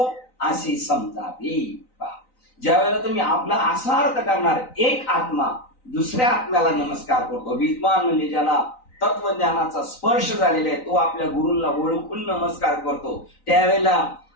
असे समजावे. ज्या वेळेला तुम्ही आपला असा अर्थ करणार, एक आत्मा दुसऱ्या आत्म्याला नमस्कार करतो. विद्वान म्हणजे ज्याला तत्वज्ञानाचा स्पर्श झालेला आहे, तो आपल्या गुरूंना ओळखून नमस्कार करतो. त्यावेळेला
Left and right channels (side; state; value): right; late; 3.9 ms